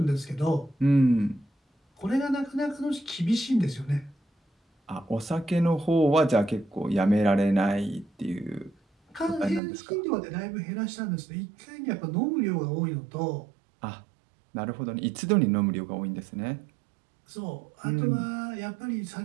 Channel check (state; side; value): drops out; left; at 9.6 s